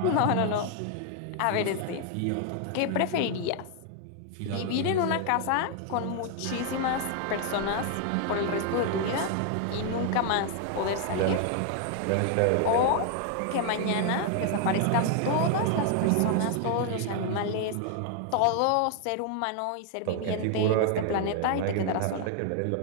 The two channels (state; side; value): different; both; correlation 0.00